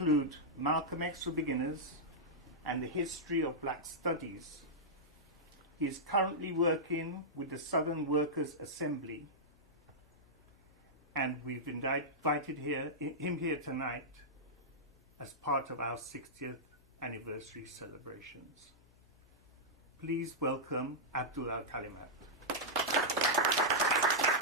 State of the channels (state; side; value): noise; left; hum, 30 dB below the sound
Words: Malcolm X for Beginners and the History of Black Studies. He is currently working with the Southern Workers Assembly and we've invited him here tonight as part of our 60th anniversary celebrations. Please welcome Abdul Al-Kalimat.